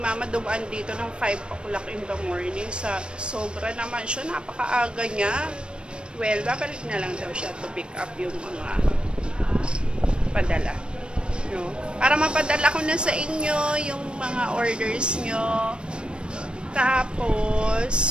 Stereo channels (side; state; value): left; late; 0.055 ms